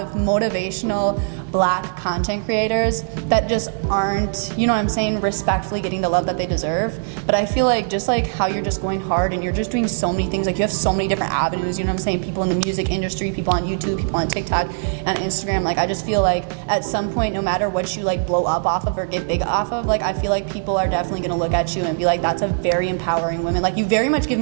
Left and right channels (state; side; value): silent; left; 65 dB below the other